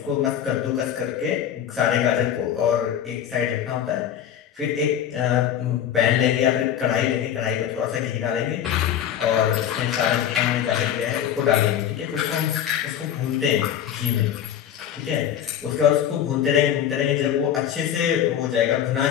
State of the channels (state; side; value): quieter; right; 9.8 dB